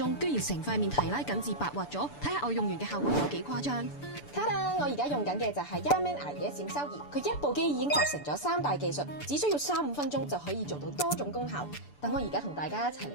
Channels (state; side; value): late; right; 6.9 ms